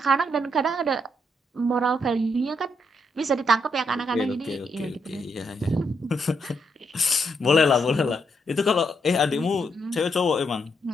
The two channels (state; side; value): normal; both; correlation 0.77